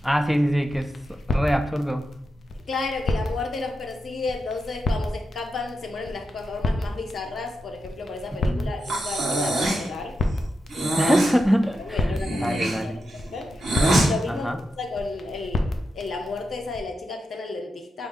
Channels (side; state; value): both; normal; correlation 0.88